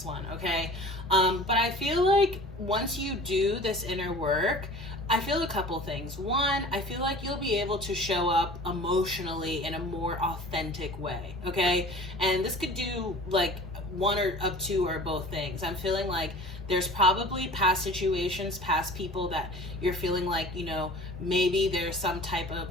one, okay? But I feel like once you do this inner work, I feel a couple things. One, I feel like you'll be able to show up emotionally in a more authentic way, okay? And this could do like one or of two or both things. I'm feeling like there's probably past situations, past people that you're feeling like, you know, maybe there's some type of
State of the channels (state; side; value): normal; both; correlation 0.43